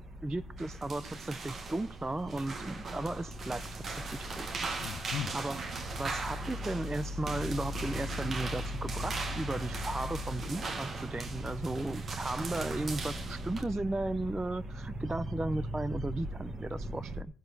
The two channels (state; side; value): normal; both; correlation 0.88